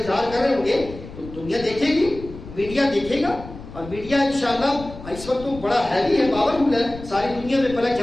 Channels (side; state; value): left; noise; rumble, 14 dB below the sound